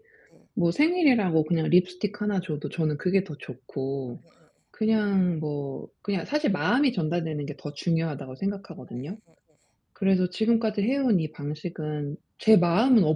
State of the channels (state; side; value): identical; both; correlation 1.00